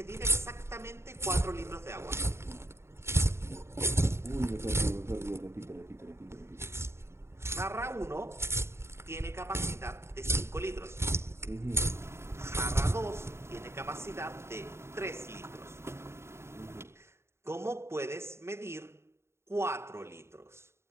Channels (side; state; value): left; late; 0.13 ms